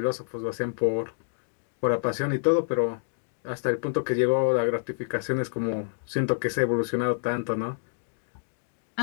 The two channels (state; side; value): silent; right; digital silence